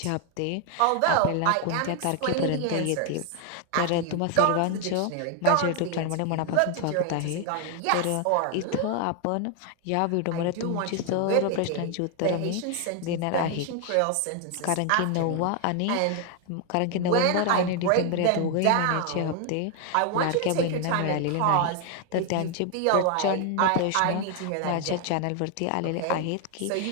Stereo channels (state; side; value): different; both; correlation 0.00